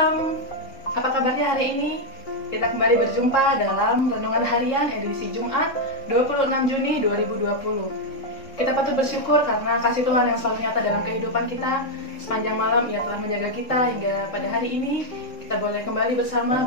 apa kabarnya hari ini? Kita kembali berjumpa dalam Renungan Harian edisi Jumat 26 Juni 2020. Kita patut bersyukur karena kasih Tuhan yang selalu nyata dalam kehidupan kita. Sepanjang malam Ia telah menjaga kita hingga pada hari ini kita boleh kembali bersama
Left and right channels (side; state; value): right; late; 3.7 ms